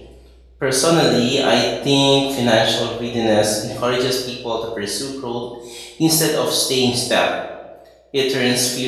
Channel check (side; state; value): both; identical; correlation 1.00